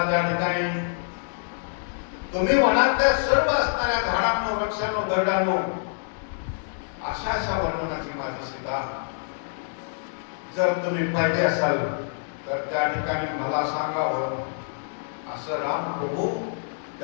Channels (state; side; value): silent; right; digital silence